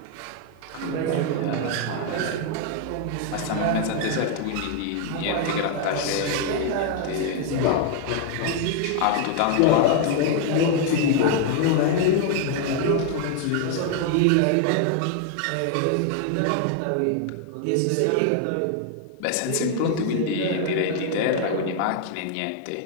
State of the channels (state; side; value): different; both; correlation 0.00